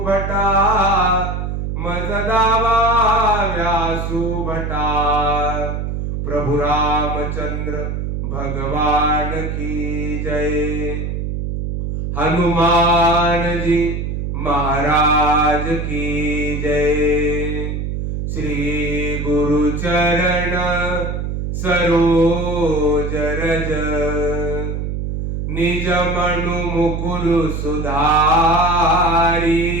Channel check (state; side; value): noise; right; hum, 3 dB below the sound